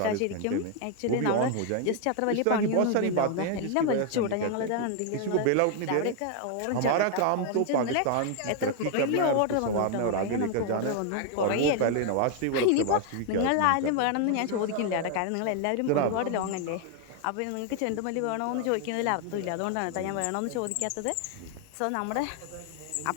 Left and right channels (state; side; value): different; both; correlation 0.00